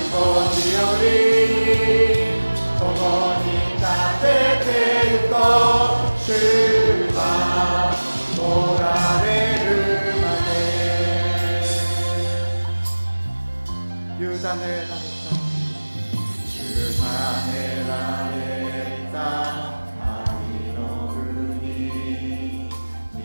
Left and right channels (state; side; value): inverted; both; correlation -1.00